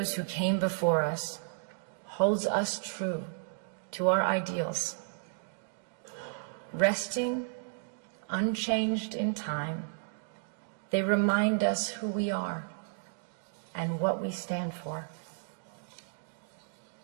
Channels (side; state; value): left; silent; digital silence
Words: who came before us holds us true to our ideals, resting unchanged in time. They remind us who we are and what we stand for.